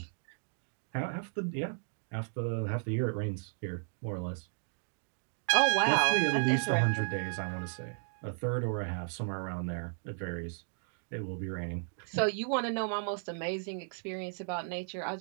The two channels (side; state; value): left; silent; digital silence